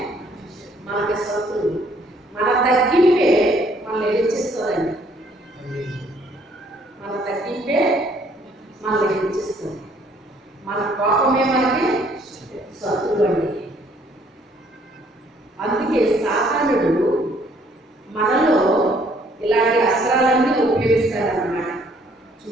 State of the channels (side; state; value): both; normal; correlation 0.63